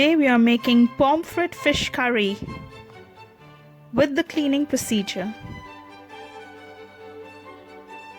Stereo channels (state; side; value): identical; both; correlation 1.00